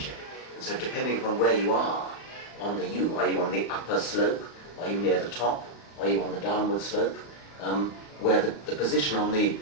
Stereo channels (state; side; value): late; right; 35 ms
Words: And so depending upon where you are on the U, are you on the upper slope, are you near the top, are you on the downward slope, where the position on the